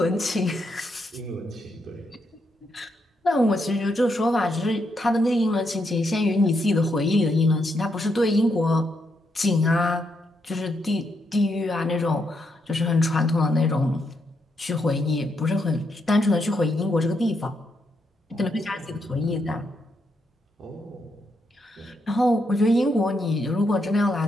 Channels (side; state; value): both; normal; correlation 0.79